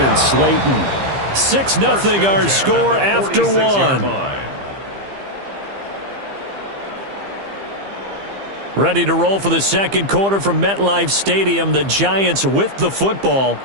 Slayton. 6-0 our score after one. Ready to roll for the second quarter from MetLife Stadium. The Giants with the football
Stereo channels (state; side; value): late; left; 15 ms